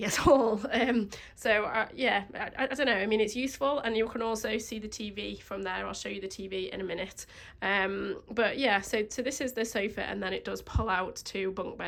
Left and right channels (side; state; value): both; identical; correlation 1.00